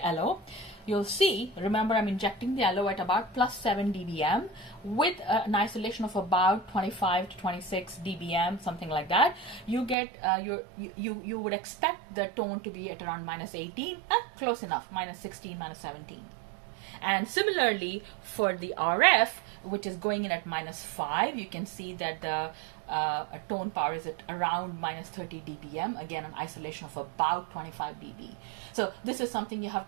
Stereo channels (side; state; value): left; drops out; at 10.0 s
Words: LO, you'll see, remember I'm injecting the LO at about plus 7 dBm with an isolation of about 25 to 26 dBm, something like that. You get you would expect the tone to be at around minus 18, close enough, minus 16, minus 17. And similarly for the RF, which is going in at minus 5, you can see that the tone power is at around minus 30 dBm, again an isolation of about 25 dB. So this is something you have